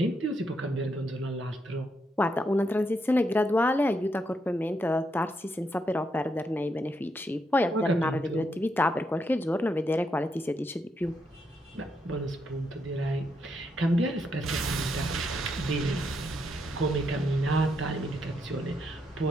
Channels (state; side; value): normal; both; correlation 0.79